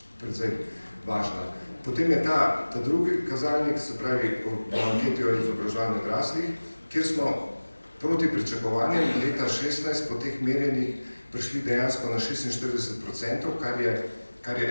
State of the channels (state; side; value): inverted; both; correlation -1.00